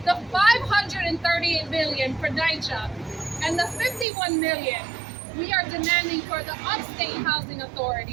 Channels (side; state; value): left; drops out; at 4.0 s